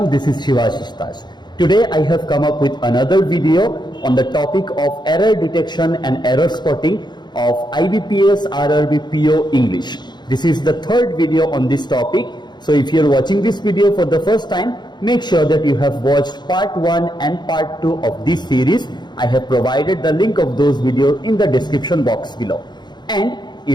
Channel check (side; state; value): right; late; 0.21 ms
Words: This is Shivashish Taj. Today I have come up with another video on the topic of error detection and error spotting of IBPS RRB PO English. This is the third video on this topic. So if you're watching this video for the first time, make sure that you have watched part 1 and part 2 of this series. I have provided the link of those videos in the description box below. And